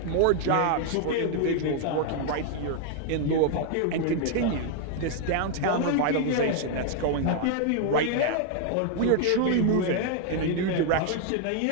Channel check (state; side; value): different; both; correlation 0.00